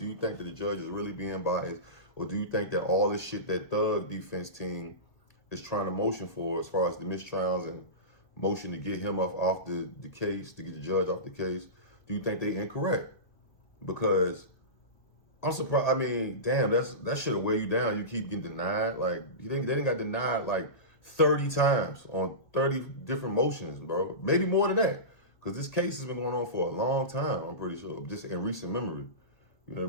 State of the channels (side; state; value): right; late; 1.6 ms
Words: you think that the judge is really being biased? Or do you think that all this shit that Thug defense team is trying to motion for, as far as the mistrials and motion to get him off the case, to get the judge off the case, do you think they incorrect? Because I'm surprised. I mean, damn, that should have weighed you down. You keep getting denied. Like, they didn't got denied like 30 times on 30 different motions, bro. Maybe more than that. Because this case has been going on for a long time, I'm pretty sure, just in recent memory. You know what